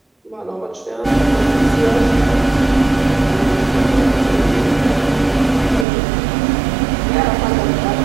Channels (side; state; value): left; drops out; at 5.9 s